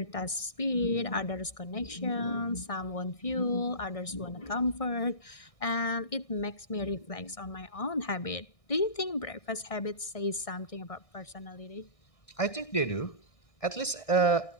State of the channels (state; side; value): late; right; 1.6 ms